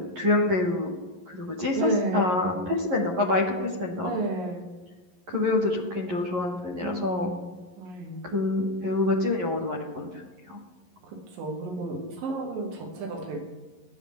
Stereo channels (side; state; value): left; late; 11 ms